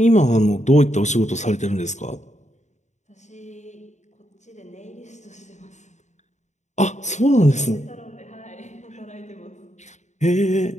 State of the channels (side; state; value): right; late; 0.34 ms